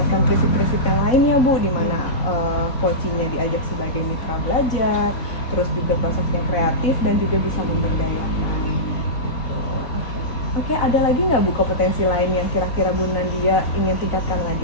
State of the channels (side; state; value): right; late; 4.0 ms